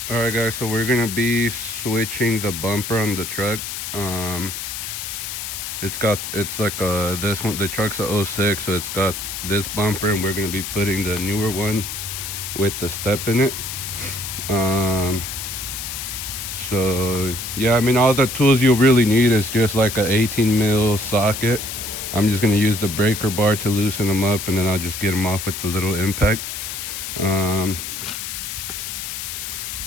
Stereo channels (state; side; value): noise; left; hiss, 6 dB below the sound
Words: All right, guys, so we're gonna be switching the bumper on the truck. It's like this one, the truck's a '06, so it's got this bumper, and we're gonna be putting the newer one with the step in it. So yeah, I mean, all the tools you'll really need is just like a 18 mil socket. I'm just gonna use the breaker bar to loosen them up, and then I'll just get them off with the little impact.